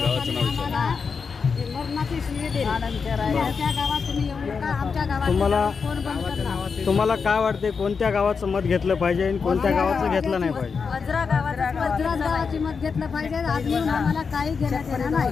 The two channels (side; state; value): right; quieter; 5.5 dB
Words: आम्हाला मरणाची शिवी दिली. आमच्या गावात तुम्ही येऊ नका. आमच्या गावात कोण बंद करणार? तुम्हाला काय वाटते कोणत्या गावाचं मत घेतलं पाहिजे आणि कोणत्या गावाचं घेतलं नाही पाहिजे? वज्रा गावाची मत घेतलं पाहिजे. आजनी आम्हाला काही घेण्यात येणार